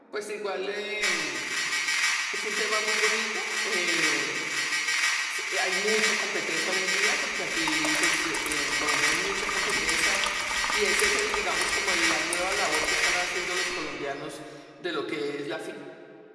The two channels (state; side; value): identical; both; correlation 1.00